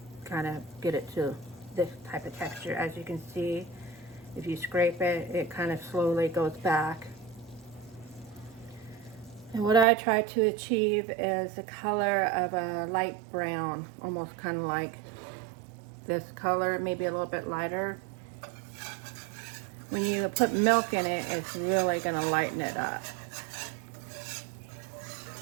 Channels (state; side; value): drops out; left; at 9.9 s